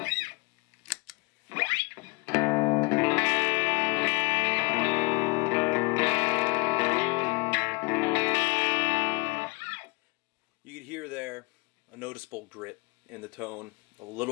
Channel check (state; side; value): quieter; right; 27.1 dB